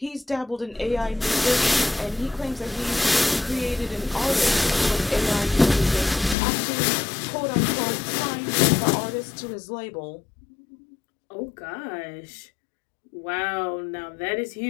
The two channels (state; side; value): drops out; right; at 6.4 s